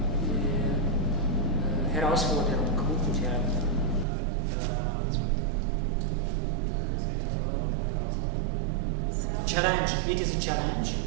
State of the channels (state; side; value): drops out; left; at 4.0 s